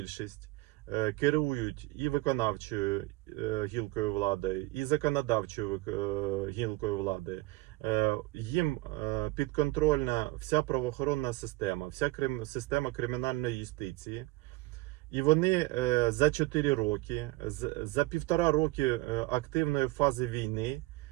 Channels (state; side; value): quieter; left; 20.5 dB